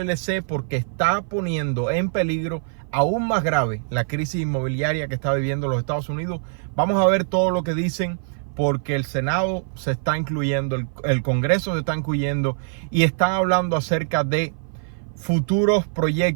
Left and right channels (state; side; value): silent; left; 56 dB below the other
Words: porque está poniendo en peligro aún más grave la crisis inmobiliaria que está viviendo los Estados Unidos. Vamos a ver todo lo que dicen, porque el Senado se está incluyendo, el Congreso se está incluyendo y están hablando acerca de futuros